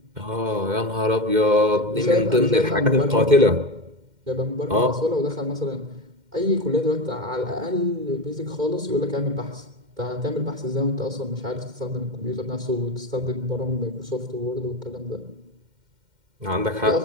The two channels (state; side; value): late; left; 2.1 ms